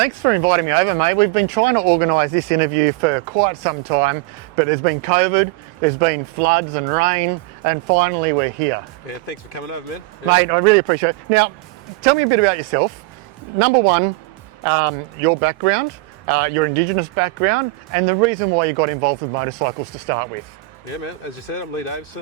for inviting me over, mate. We've been trying to organise this interview for quite some time, but there's been COVID, there's been floods and rain, and finally we're here. Yeah, thanks for coming over, man. Yeah. Mate, I really appreciate it. Now, tell me a bit about yourself. Number one, your background, your Indigenous background, and the reason why you got involved with motorcycles to start with. Yeah, man. As you said, I'm Lee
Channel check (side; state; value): left; quieter; 21.0 dB